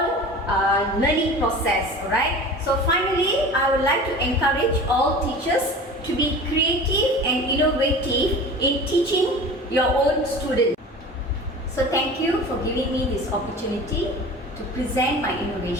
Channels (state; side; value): normal; both; correlation 0.37